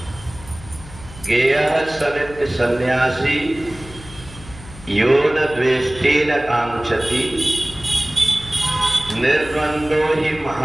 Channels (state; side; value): noise; left; hum, 17 dB below the sound